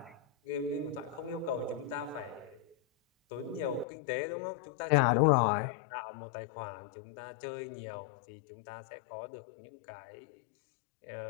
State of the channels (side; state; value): right; drops out; at 3.9 s